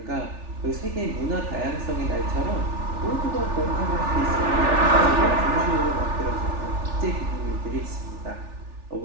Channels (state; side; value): late; left; 3.4 ms